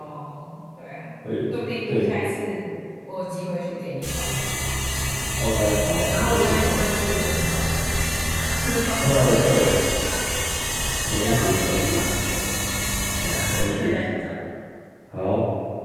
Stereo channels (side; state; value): both; identical; correlation 1.00